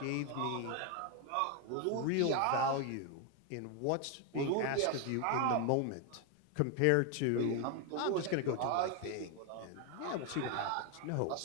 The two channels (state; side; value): different; both; correlation 0.01